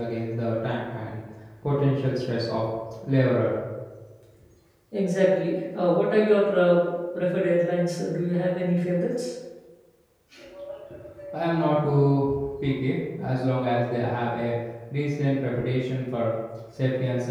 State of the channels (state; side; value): identical; both; correlation 1.00